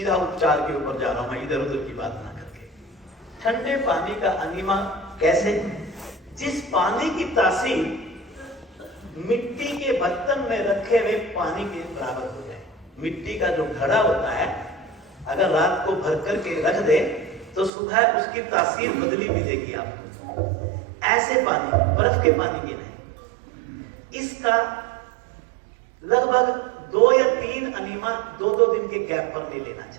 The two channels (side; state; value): left; drops out; at 17.7 s